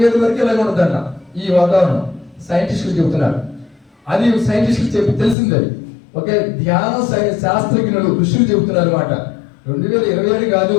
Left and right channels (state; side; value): drops out; right; at 5.4 s